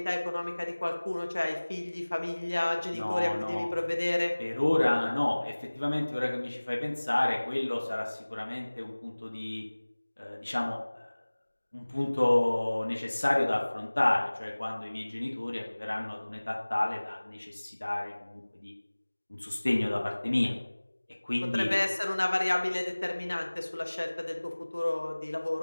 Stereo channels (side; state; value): both; inverted; correlation -1.00